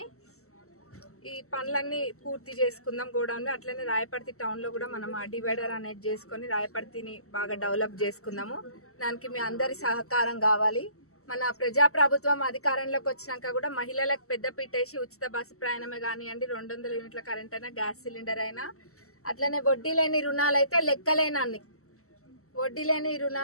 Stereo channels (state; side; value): late; right; 0.63 ms